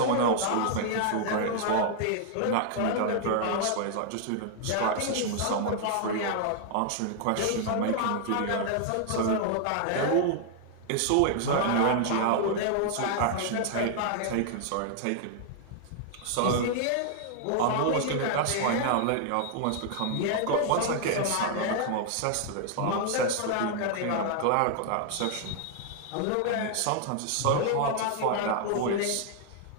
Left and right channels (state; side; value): different; both; correlation 0.00